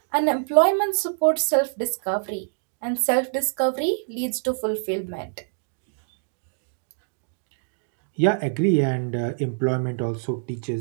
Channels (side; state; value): left; silent; 62 dB below the other